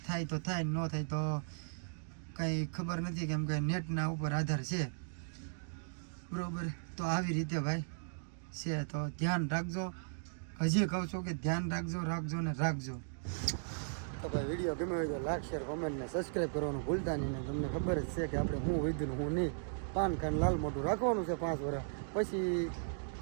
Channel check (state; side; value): silent; left; digital silence